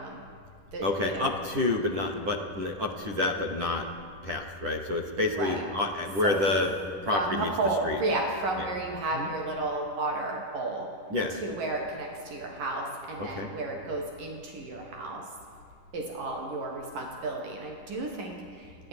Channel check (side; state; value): left; late; 11 ms